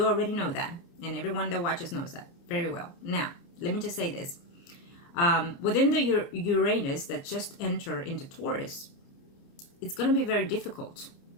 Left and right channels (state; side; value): late; right; 29 ms